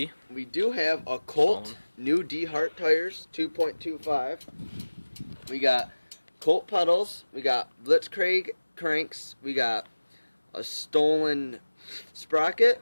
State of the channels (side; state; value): both; inverted; correlation -1.00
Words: We do have a Colt new D-Hart tires, 2.25. We got Colt pedals. We got Blitzkrieg cranks. We got a stolen sprocket,